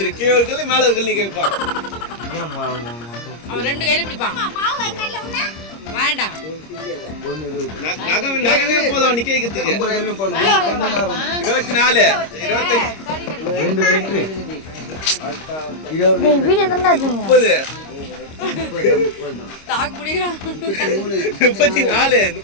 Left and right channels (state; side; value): late; right; 26 ms